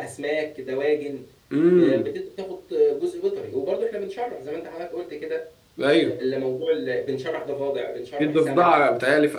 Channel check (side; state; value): both; identical; correlation 1.00